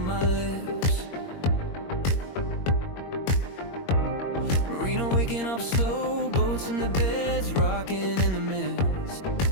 my lips. Marina waking up slow, boats in the beds, rocking in the mist.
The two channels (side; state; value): right; late; 21 ms